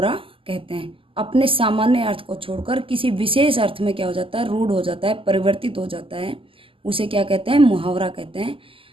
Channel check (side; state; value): left; late; 0.26 ms